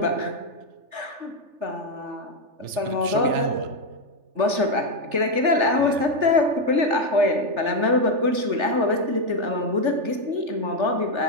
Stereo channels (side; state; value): left; late; 3.4 ms